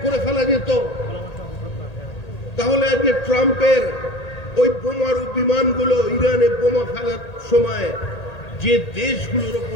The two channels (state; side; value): late; right; 1.8 ms